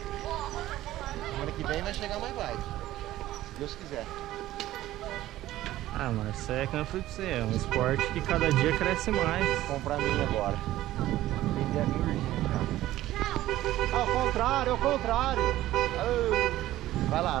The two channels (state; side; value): quieter; left; 14.9 dB